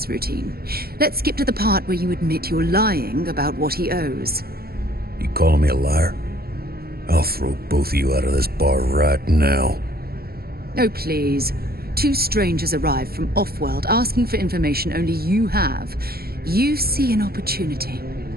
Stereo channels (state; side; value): late; left; 0.45 ms